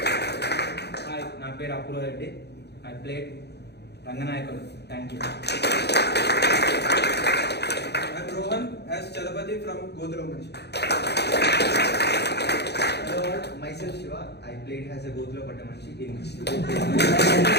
Hi, నా పేరు Apoorva Reddy. I played Ranganayakudu. Thank you. I'm Rohan as Chalapati from Godhra Manchi. Hello all, myself Shiva. I played as a Godhra Patamanchi in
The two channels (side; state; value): right; late; 0.48 ms